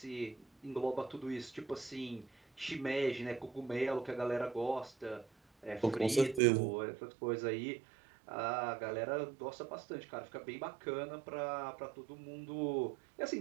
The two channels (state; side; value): drops out; left; at 6.4 s